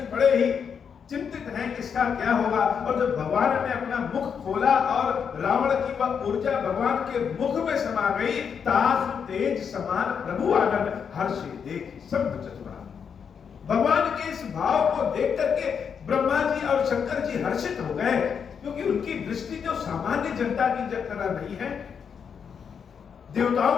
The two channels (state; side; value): quieter; right; 6.9 dB